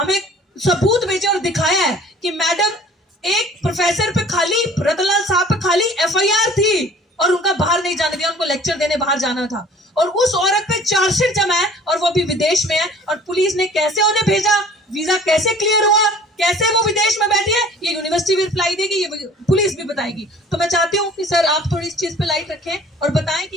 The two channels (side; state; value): both; normal; correlation 0.49